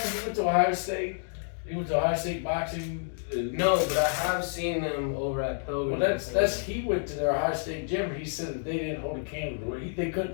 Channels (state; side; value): silent; right; digital silence